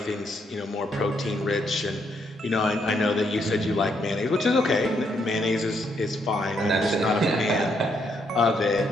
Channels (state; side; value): normal; both; correlation 0.75